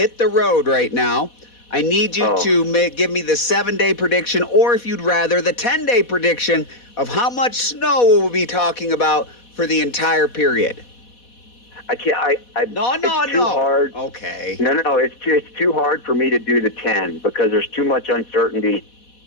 the road right now. I need you to give me the 7-day prediction, or if you'd rather, the 10-day prediction of how much snow we'll be talking about for the entire period. I can't. No. It's too hard. Okay. No. It's too hard for me to do the 10 because there's too much uncertainty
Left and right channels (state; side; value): late; right; 4.1 ms